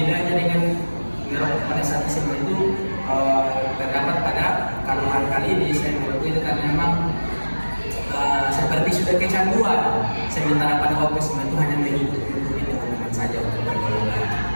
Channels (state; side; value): inverted; both; correlation -1.00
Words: dengan merokok pada saat SMA itu terdapat pada kandungan kali ini saya merokok itu karena memang seperti sudah kecanduan, sementara pada waktu SMA itu hanya mengikuti teman-teman saja untuk bergaul.